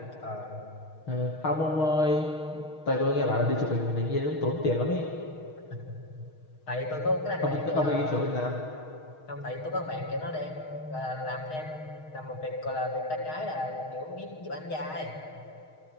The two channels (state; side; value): late; right; 6.4 ms